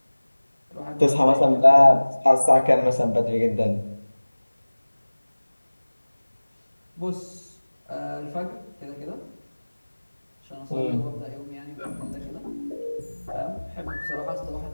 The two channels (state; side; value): inverted; both; correlation -1.00